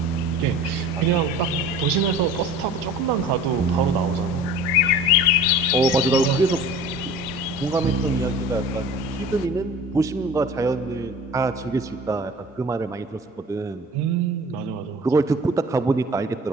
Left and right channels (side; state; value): both; normal; correlation 0.42